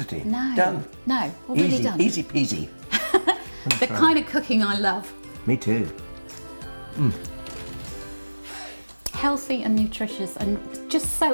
No. Done. No. Already Easy, done. easy peasy. The kind of cooking I love. Me too. Healthy and nutritious and just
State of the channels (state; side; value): inverted; both; correlation -1.00